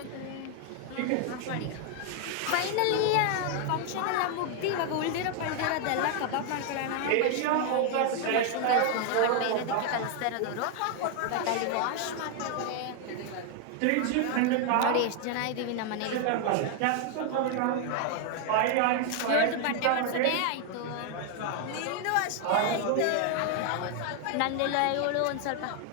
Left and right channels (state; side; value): different; both; correlation 0.00